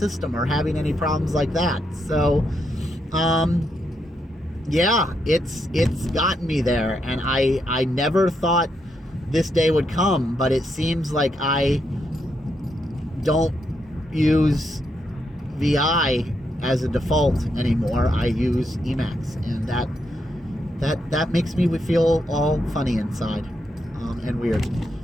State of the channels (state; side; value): normal; both; correlation 0.80